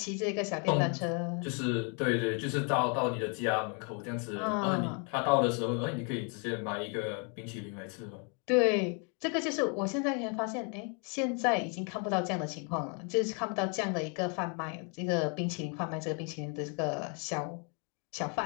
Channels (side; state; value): right; quieter; 37.0 dB